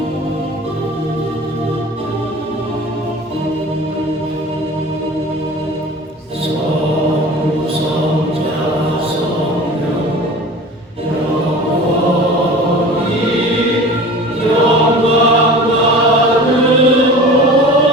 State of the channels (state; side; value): normal; both; correlation 0.39